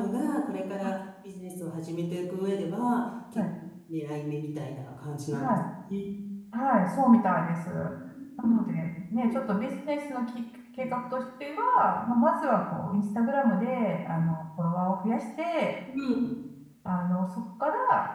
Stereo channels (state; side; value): identical; both; correlation 1.00